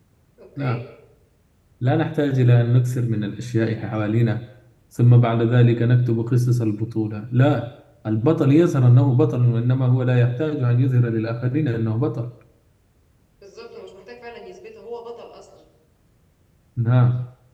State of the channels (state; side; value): identical; both; correlation 1.00